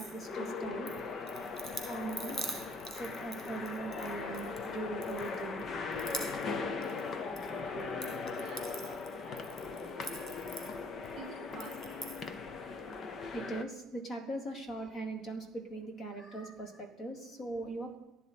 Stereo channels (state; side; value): normal; both; correlation 0.60